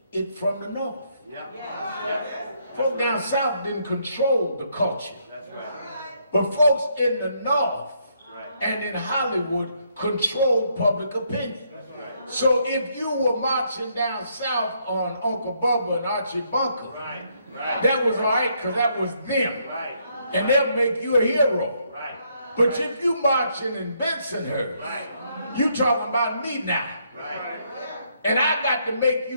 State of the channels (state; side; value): inverted; both; correlation -0.73